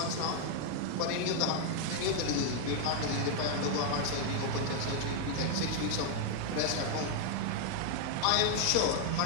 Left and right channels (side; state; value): both; different; correlation 0.00